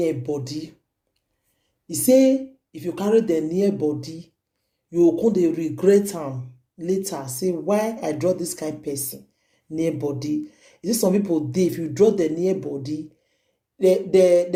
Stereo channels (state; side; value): identical; both; correlation 1.00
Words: body. He say if you carry the near body, you will come dey regret am later. Say why I draw this kind of person near body. Is it some people dey if you draw the near body, they